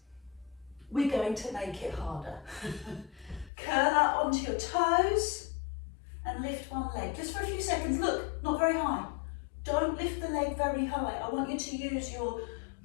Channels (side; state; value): right; drops out; at 3.5 s